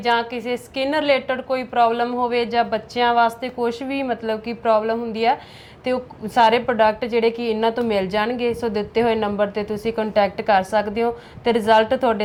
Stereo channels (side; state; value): both; identical; correlation 1.00